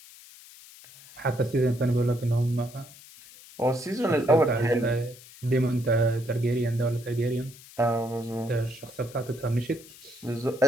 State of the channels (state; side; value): noise; left; hiss, 20 dB below the sound